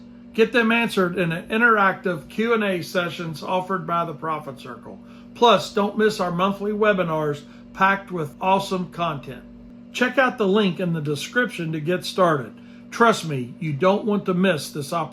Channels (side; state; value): both; identical; correlation 1.00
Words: Get them answered in an interactive Q&A sessions offered by the Profit Circle. Plus, don't miss our monthly webinars packed with awesome content. Check out the link in the description to get started. Trust me, you don't want to miss this